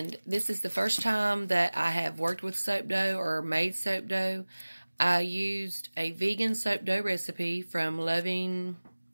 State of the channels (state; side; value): inverted; both; correlation -1.00